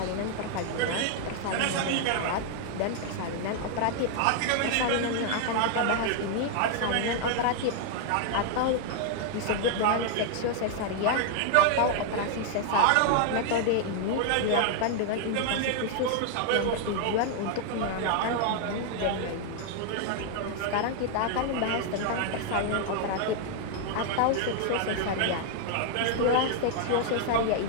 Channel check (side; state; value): both; different; correlation 0.00